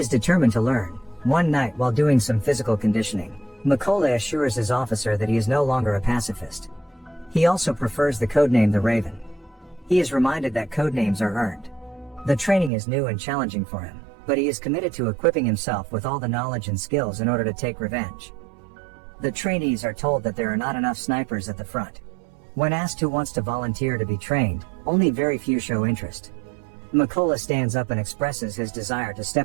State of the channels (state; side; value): drops out; left; at 12.7 s